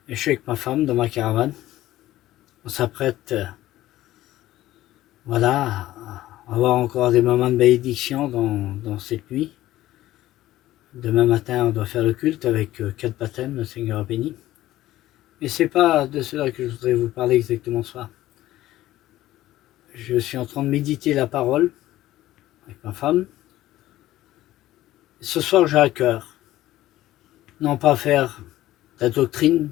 Et je suis avec ma femme dans ma caravane. On s'apprête, voilà, à avoir encore des moments de bénédiction dans cette nuit. Demain matin, on doit faire le culte avec 4 baptêmes, le Seigneur a béni. Mais c'est pas de cela que je voudrais vous parler exactement ce soir. Je suis en train de méditer la parole avec ma femme. Ce soir, j'ai à cœur, non pas faire de la doctrine,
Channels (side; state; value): right; quieter; 15.1 dB